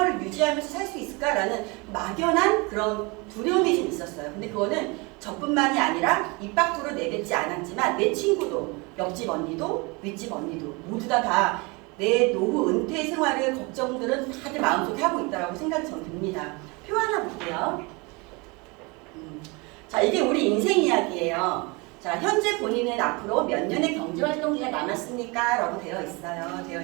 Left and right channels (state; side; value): quieter; left; 27.6 dB